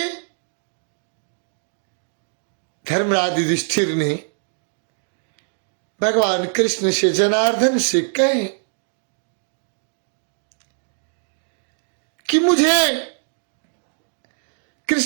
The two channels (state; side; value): silent; left; digital silence